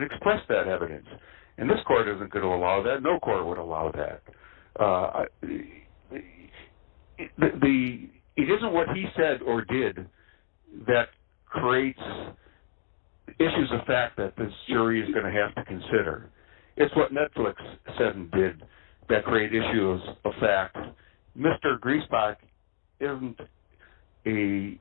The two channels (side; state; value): right; silent; digital silence